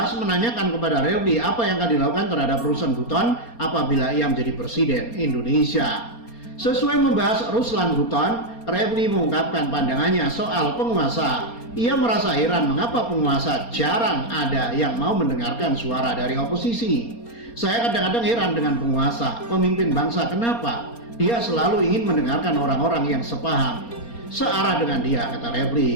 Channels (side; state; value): right; late; 4.3 ms